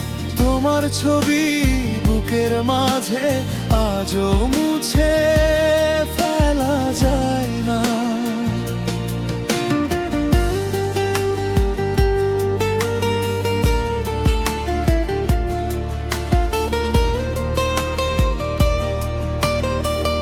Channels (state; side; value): identical; both; correlation 1.00